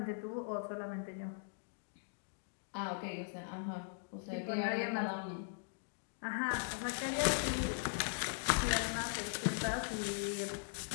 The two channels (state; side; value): silent; right; digital silence